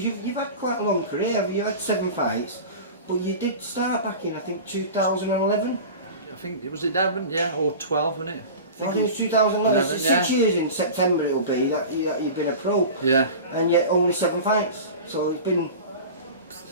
you've had quite a long career. You've had 7 fights, but you did start back in, I think, 2011. I think, was it 11? Yeah, or 12, wasn't it? I think it was 2011. 11, So 6 years in September it'll be that you've been a pro. Yeah. And yet only 7 fights. So it's been...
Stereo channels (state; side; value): inverted; both; correlation -0.33